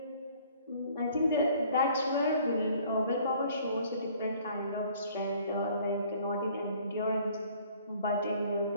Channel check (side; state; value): both; inverted; correlation -0.56